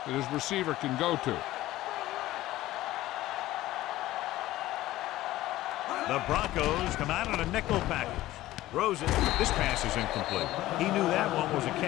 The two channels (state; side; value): quieter; right; 15.9 dB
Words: that his receiver can go to. The Broncos come out on a nickel package. Throws it. This pass is incomplete. He knew that one was a